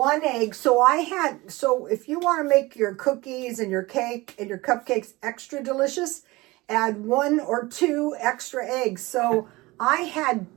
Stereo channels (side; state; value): left; quieter; 21.3 dB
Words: egg. So if you want to make your cookies and your cake and your cupcakes extra delicious, add 1 or 2 extra eggs. So I